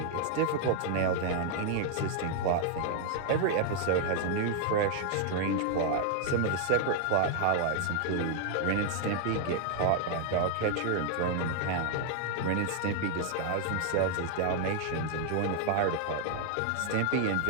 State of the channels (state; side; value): different; both; correlation 0.00